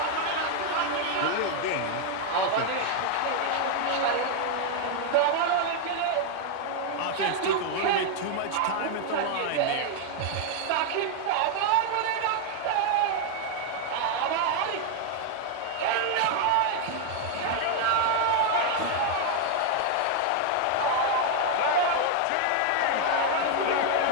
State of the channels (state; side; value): different; both; correlation 0.00